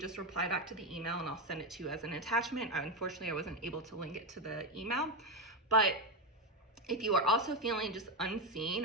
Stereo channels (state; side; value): normal; both; correlation 0.11